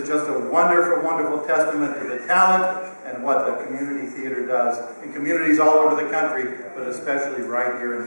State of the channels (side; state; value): both; inverted; correlation -1.00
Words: just a wonderful, wonderful testament to the talent and what the community theater does in communities all over the country, but especially right here in